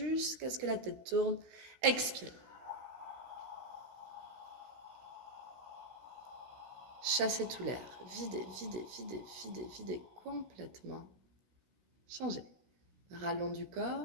ce que la tête tourne. Expirez. Chassez tout l'air. Videz, videz, videz, videz, videz complètement. Changez. Rallonge du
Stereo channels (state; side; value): late; left; 16 ms